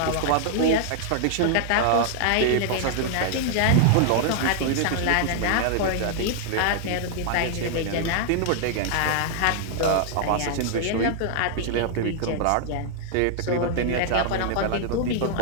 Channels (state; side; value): different; both; correlation -0.01